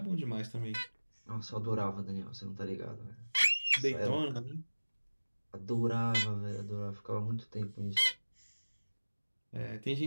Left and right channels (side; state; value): both; inverted; correlation -1.00